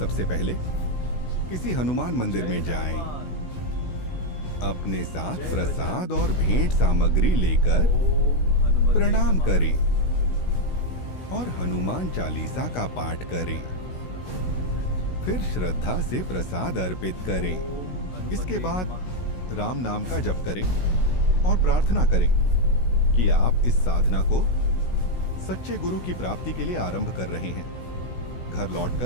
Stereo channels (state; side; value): late; right; 16 ms